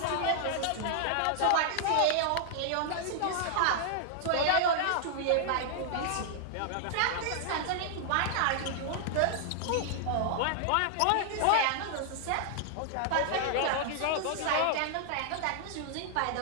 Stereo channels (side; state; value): both; different; correlation -0.01